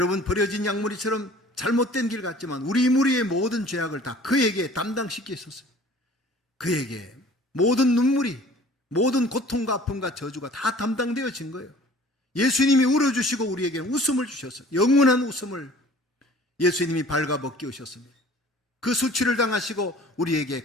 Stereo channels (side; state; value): both; normal; correlation 0.49